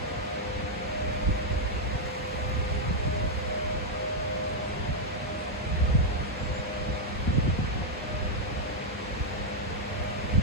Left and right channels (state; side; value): normal; both; correlation -0.01